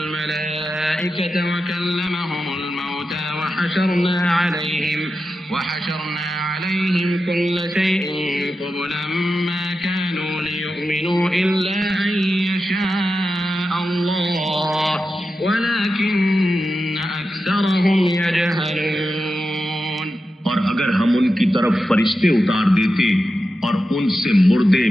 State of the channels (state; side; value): normal; both; correlation 0.91